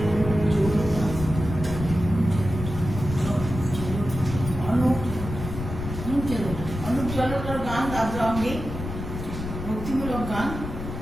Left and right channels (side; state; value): left; noise; rumble, 7 dB below the sound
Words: অনুপ জলোটার গান আদ্রা অঙ্গে ভক্তিমূলক গান।